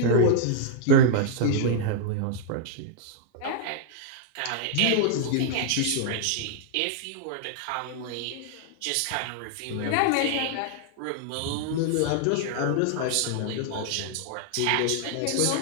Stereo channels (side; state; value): both; different; correlation -0.01